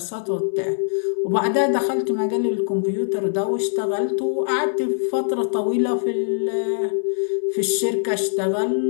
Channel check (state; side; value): silent; right; digital silence